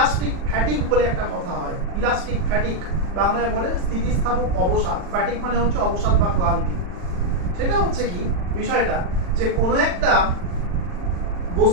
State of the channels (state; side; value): late; left; 40 ms